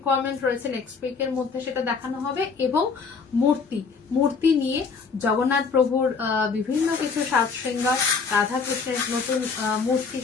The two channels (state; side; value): quieter; right; 5.1 dB